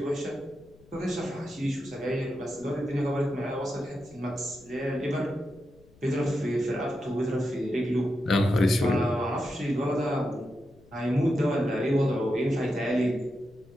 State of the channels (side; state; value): left; noise; rumble, 26 dB below the sound